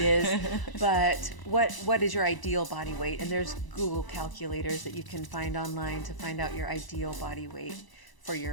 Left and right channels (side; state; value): right; late; 1.0 ms